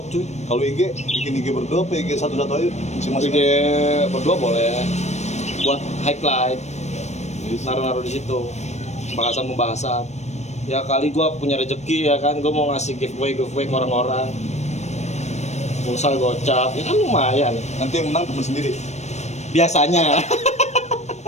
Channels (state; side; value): late; right; 0.33 ms